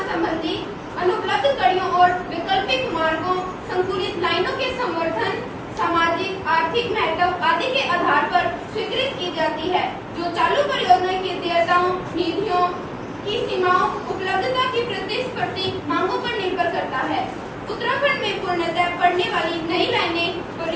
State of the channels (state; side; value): identical; both; correlation 1.00